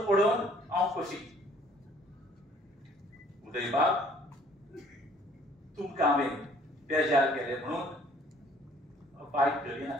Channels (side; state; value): both; normal; correlation 0.58